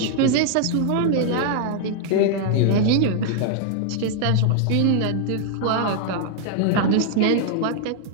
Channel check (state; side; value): different; both; correlation 0.00